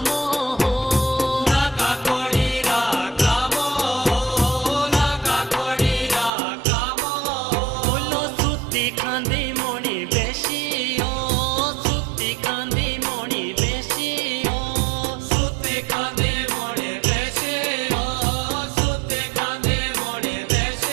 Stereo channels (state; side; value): drops out; left; at 6.3 s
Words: हो लगा कोड़ीरा कामो हो लगा कोड़ीरा कामो बोलो सुती खांदी मोनी बेशी सुती कांदी मोनी बेशी सुती कांदी मोनी बेशी सुती कांदी मोनी